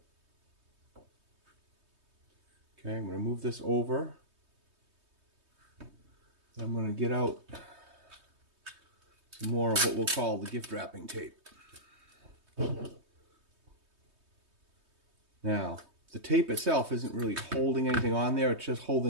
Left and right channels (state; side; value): late; left; 3.2 ms